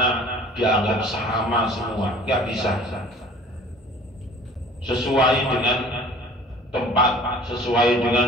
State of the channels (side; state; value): both; normal; correlation 0.48